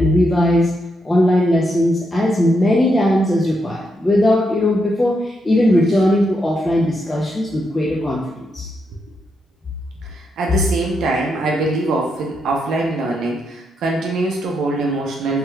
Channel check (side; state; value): both; normal; correlation 0.81